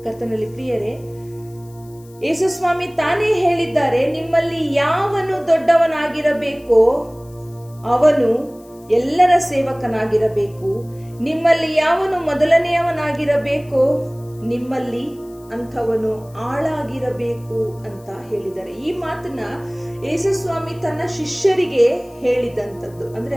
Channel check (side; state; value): left; noise; hiss, 27 dB below the sound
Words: ಕರ್ತನಲ್ಲಿ ಪ್ರಿಯರೇ, ಯೇಸು ಸ್ವಾಮಿ ತಾನೇ ಹೇಳಿದ್ದಾರೆ, ನಿಮ್ಮಲ್ಲಿ ಯಾವನು ದೊಡ್ಡವನಾಗಿರಬೇಕೋ ಅವನು ಎಲ್ಲರ ಸೇವಕನಾಗಿರಬೇಕು, ನಿಮ್ಮಲ್ಲಿ ಯಾವನು ಮೊದಲನೆಯವನಾಗಿರಬೇಕೋ ನಿಮ್ಮಲ್ಲಿ ಅಂಥವನು ಆಳಾಗಿರಬೇಕು ಅಂತ ಹೇಳಿದ್ದಾರೆ. ಈ ಮಾತನ್ನ ಯೇಸು ಸ್ವಾಮಿ ತನ್ನ ಶಿಷ್ಯರಿಗೆ ಹೇಳಿದಂಥದ್ದು. ಅಂದ್ರೆ